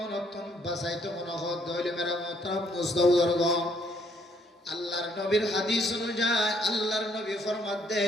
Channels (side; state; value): both; normal; correlation 0.67